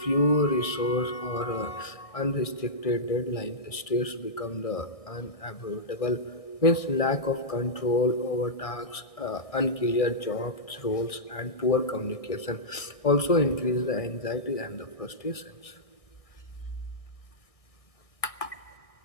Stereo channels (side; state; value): right; late; 1.6 ms